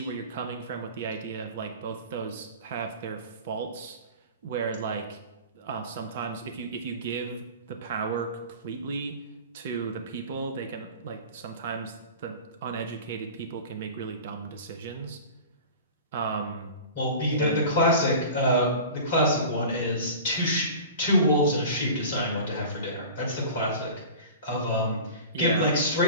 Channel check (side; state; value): both; inverted; correlation -0.37